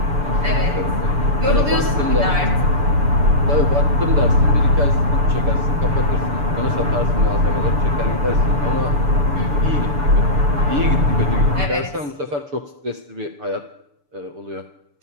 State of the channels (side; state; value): left; late; 6.9 ms